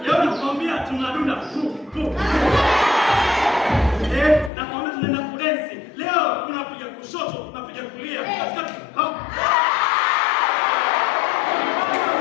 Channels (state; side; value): drops out; right; at 4.5 s